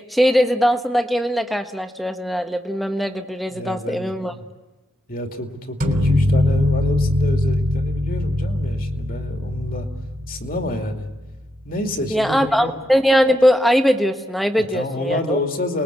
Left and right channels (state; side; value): normal; both; correlation 0.84